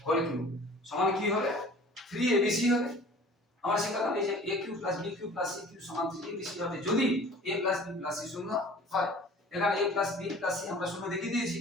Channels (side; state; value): both; normal; correlation 0.46